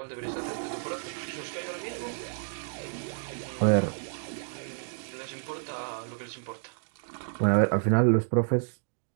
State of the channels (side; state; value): left; silent; digital silence